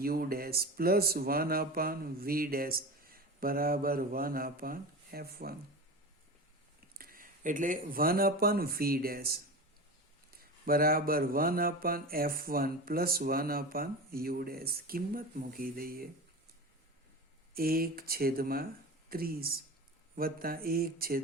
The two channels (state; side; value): normal; both; correlation 0.29